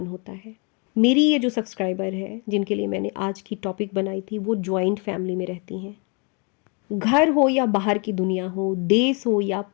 होता है। मेरी ये जो सब्सक्राइबर है जिनके लिए मैंने आज की टॉपिक बनाई थी, वो जॉइंट फैमिली में रहती हैं। घर हो या बाहर की दुनिया हो, देश हो या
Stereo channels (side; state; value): right; quieter; 34.1 dB